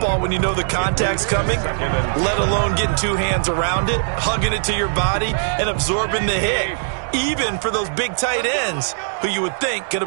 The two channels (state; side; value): silent; left; digital silence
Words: when you know the contact's coming, let alone getting two hands around it, hugging it to your body, and absorbing the hit. Even for those big tight ends who you would think could